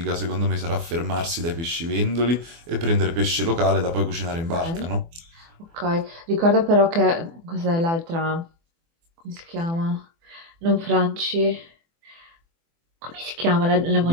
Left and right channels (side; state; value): left; late; 24 ms